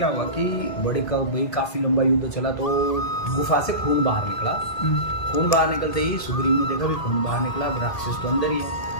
हुआ कि भाई काफी लंबा युद्ध चला, तो गुफा से खून बाहर निकला। खून बाहर निकलते ही सुग्रीव ने देखा भी खून बाहर निकला, राक्षस तो अंदर ही है।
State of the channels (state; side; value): late; right; 1.8 ms